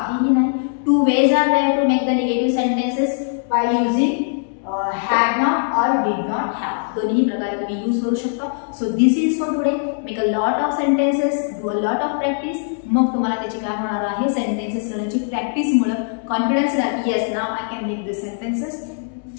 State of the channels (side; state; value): right; silent; digital silence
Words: नाही. Two ways are there to make the negative sentences by using had not or did not have. दोन्ही प्रकारे तुम्ही यूज करू शकता. So this is for today. Make a lot of sentences, do a lot of practice. मग तुम्हाला त्याची काय होणार आहे सेंटेन्सेस करण्याची प्रॅक्टिसमुळे कॉन्फिडन्स येणार. Yes now I can make this sentences.